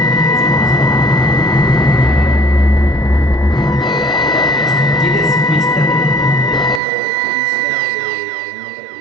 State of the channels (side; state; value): left; drops out; at 6.8 s